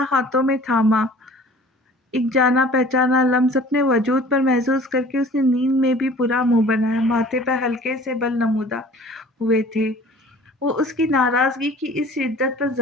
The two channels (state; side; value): normal; both; correlation 0.48